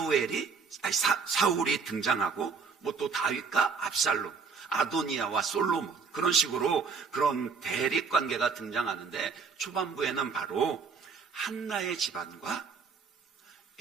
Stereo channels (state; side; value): quieter; left; 5.4 dB